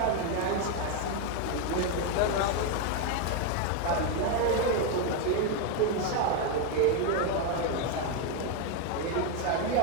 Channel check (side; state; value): both; different; correlation 0.01